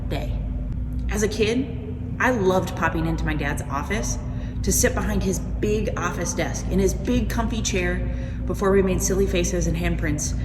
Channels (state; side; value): identical; both; correlation 1.00